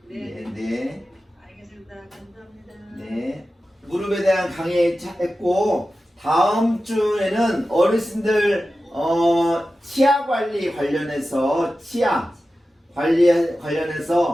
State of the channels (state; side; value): normal; both; correlation 0.94